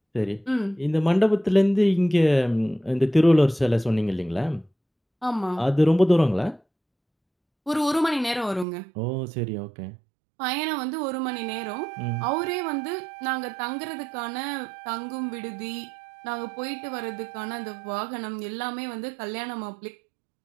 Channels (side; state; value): left; drops out; at 8.7 s